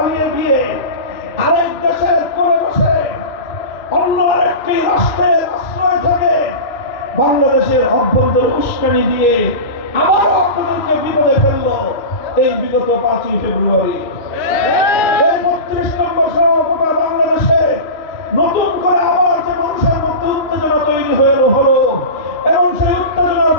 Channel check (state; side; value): late; right; 3.0 ms